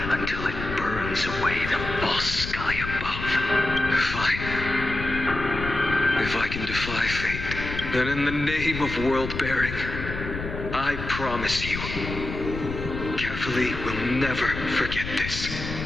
until it burns away the false sky above. Fine. If I can defy fate, then in the name of world-bearing, I promise you, carefully will never forget this.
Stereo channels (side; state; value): left; noise; rumble, 7 dB below the sound